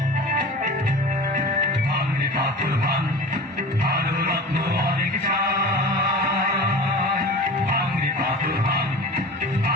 ভাঙে পাথর ভাঙ, ভালো রত্ন অনেক চাই। ভাঙে পাথর ভাঙ,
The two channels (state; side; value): normal; both; correlation 0.35